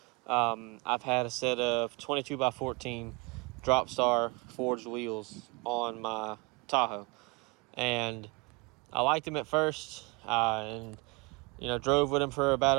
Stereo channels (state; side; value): quieter; left; 27.6 dB